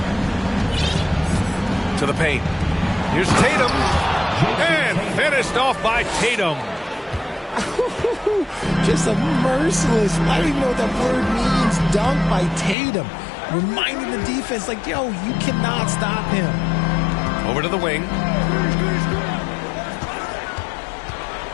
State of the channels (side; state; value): right; drops out; at 12.8 s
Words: To the paint. Here's Tatum. And finished off by Tatum. Just a merciless, I don't even know what that word means, dunk by Tatum. Reminding the defense, like, yo, you cannot stop him. Over to the wing.